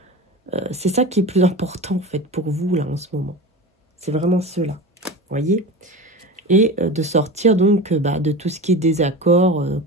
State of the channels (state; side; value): normal; both; correlation 0.30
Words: c'est ça qui est plus important, en fait, pour vous, là, en ce moment. C'est vraiment cela, vous voyez. Et de sortir, donc, de tout ce qui est désaccord,